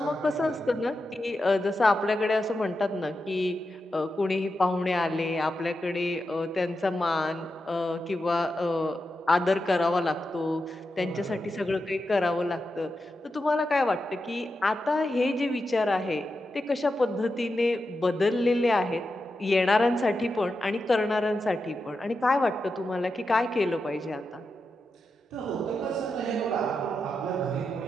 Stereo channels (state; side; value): normal; both; correlation 0.89